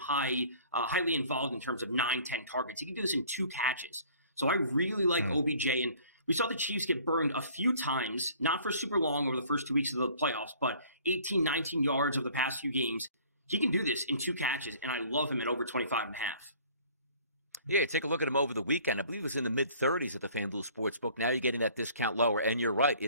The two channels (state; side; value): inverted; both; correlation -0.53